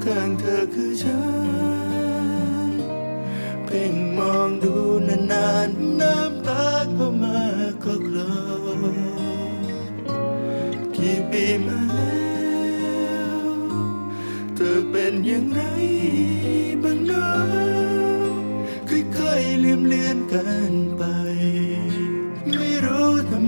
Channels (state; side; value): inverted; both; correlation -1.00